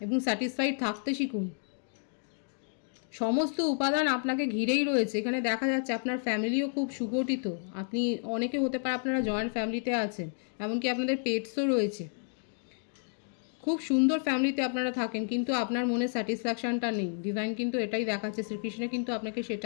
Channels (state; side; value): silent; right; 57 dB below the other